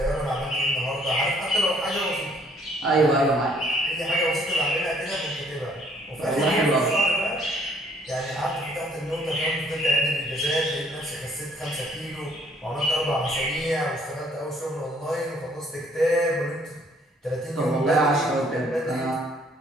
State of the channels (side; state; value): both; normal; correlation 0.63